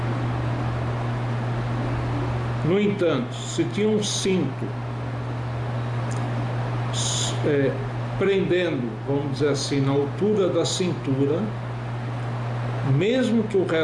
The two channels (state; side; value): identical; both; correlation 1.00